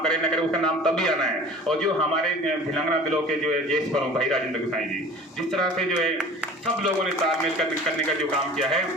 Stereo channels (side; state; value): both; normal; correlation 0.43